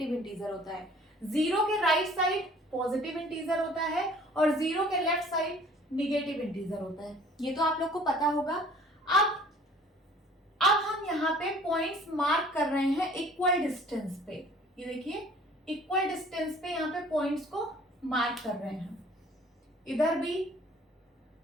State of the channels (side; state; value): both; normal; correlation 0.52